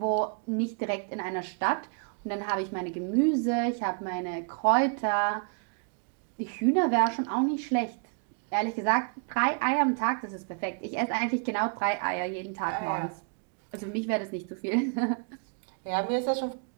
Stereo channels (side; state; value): left; quieter; 40.0 dB